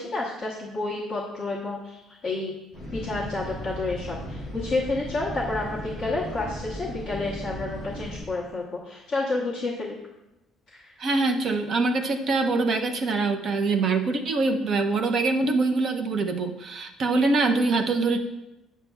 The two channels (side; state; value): both; normal; correlation 0.73